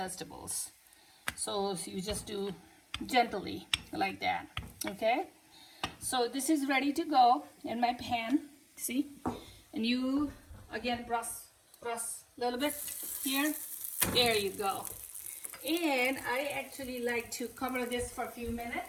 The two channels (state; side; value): identical; both; correlation 1.00